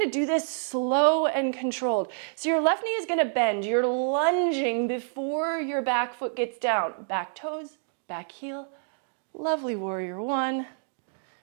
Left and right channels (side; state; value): left; silent; digital silence